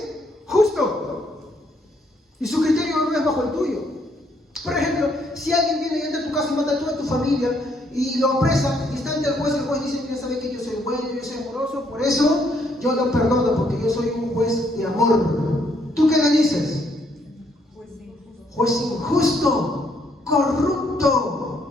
justo. Y su criterio no es bajo el tuyo. Por ejemplo, si alguien viene y entra a tu casa y mata a toda tu familia y lo apresa y está ante el juez dice, mira, sabe que yo soy bueno, yo soy amoroso, por eso yo lo perdono, porque yo soy un juez de amor. ¿Tú qué le dices? Juez injusto, corrupto.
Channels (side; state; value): both; normal; correlation 0.71